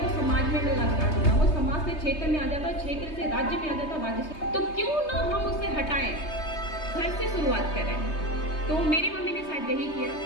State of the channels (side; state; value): right; late; 3.2 ms